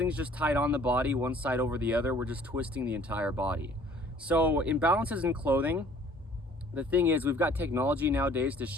just tied on the body, one side over the other. We're just twisting the entire body. So imbalances in clothing, the thing is, we've got technology nowadays to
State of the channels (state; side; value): normal; both; correlation 0.54